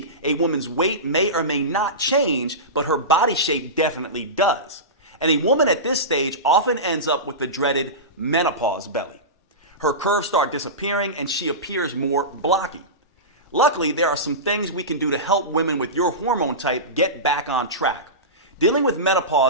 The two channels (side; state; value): both; normal; correlation -0.19